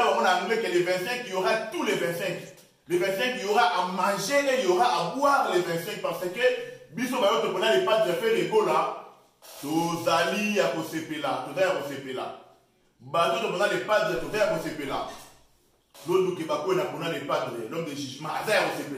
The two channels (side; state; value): both; identical; correlation 1.00